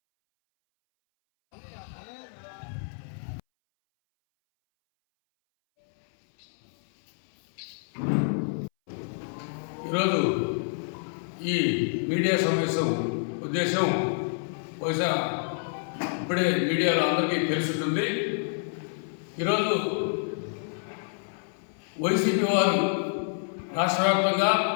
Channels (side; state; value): right; silent; 59 dB below the other